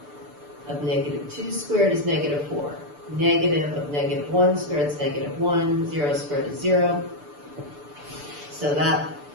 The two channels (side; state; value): left; late; 6.8 ms